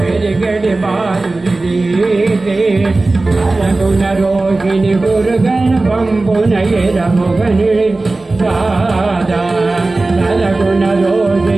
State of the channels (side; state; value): left; quieter; 3.2 dB